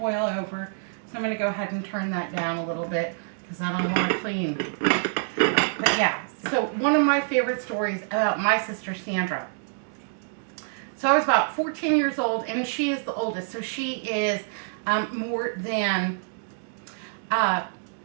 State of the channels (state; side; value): silent; left; digital silence